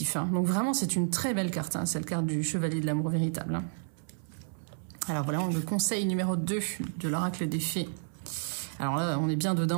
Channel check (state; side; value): silent; left; 57 dB below the other